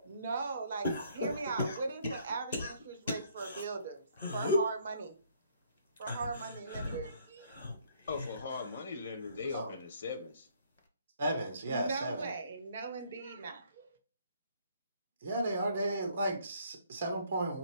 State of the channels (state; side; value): inverted; both; correlation -0.65